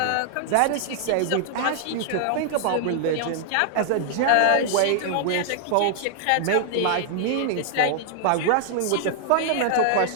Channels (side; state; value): both; different; correlation -0.01